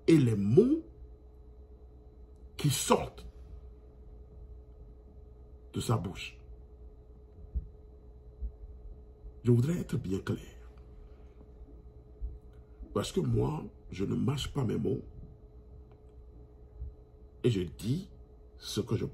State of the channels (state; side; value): identical; both; correlation 1.00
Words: et les mots qui sortent de sa bouche. Je voudrais être bien clair. Parce que moi, je ne mâche pas mes mots et je dis ce que je